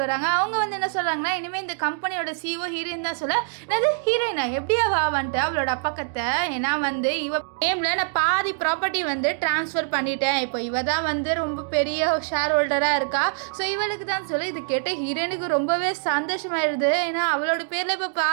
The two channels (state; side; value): silent; left; digital silence